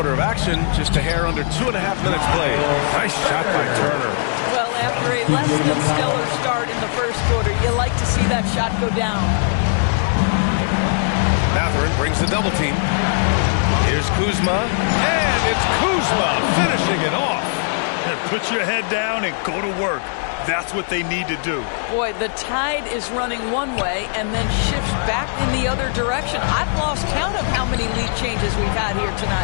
of action, just a hair under 2.5 minutes played. Nice shot by Turner. Well, after a less than stellar start in the first quarter, you like to see that shot go down. Mathurin brings the double team. Here's Kuzma, and it's Kuzma finishing it off. And put your head down and go to work. That's what they need to do. Boy, the tide is running one way and then shifts back in the other direction. I've lost count of how many lead changes we've had here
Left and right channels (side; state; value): right; silent; digital silence